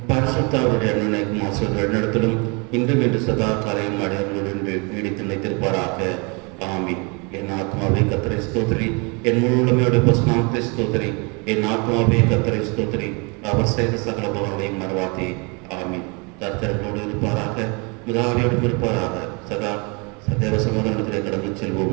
பரிசுத்தாவுடைய அன்பும் ஆசிரியர்கள் நடத்தலும் இன்றும் என்று சதா காலையும் அடையாளங்களுடன் நீடித்து நிலைத்திருப்பாராக. ஆமீன். என் ஆத்மாவே கர்த்தரை ஸ்தோத்திரி, என் முழு உடமையோட பசுநாமத்தை ஸ்தோத்திரி. என் ஆத்மாவே கர்த்தரை ஸ்தோத்திரி, அவர் செய்த சகல பலன்களையும் மறவாதே. ஆமீன். கர்த்தர்களோடு இருப்பாராக, முதலாளியோடும் இருப்பாராக. சதா சதேவ சமாதானத்திலே கடந்து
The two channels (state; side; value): quieter; left; 31.4 dB